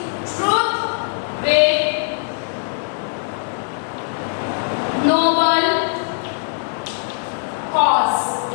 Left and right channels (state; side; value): silent; right; 65 dB below the other